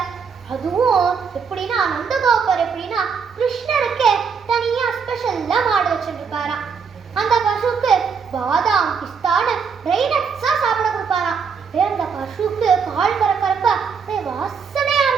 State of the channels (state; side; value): quieter; left; 6.0 dB